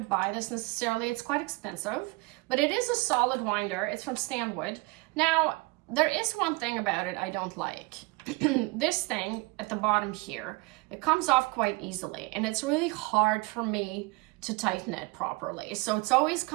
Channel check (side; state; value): left; quieter; 25.0 dB